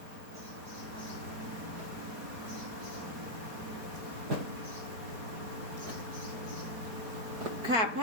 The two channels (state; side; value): late; left; 4.6 ms